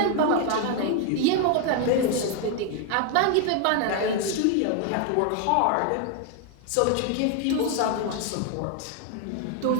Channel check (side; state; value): both; different; correlation 0.01